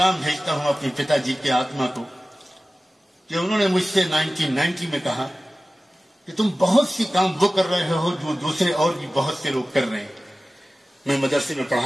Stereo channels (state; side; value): normal; both; correlation 0.96